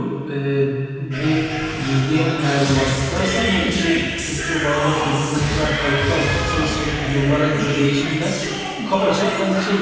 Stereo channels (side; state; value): both; identical; correlation 1.00